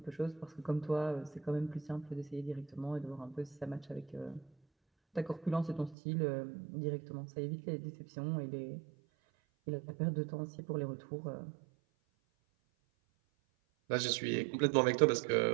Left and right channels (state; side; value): drops out; left; at 6.0 s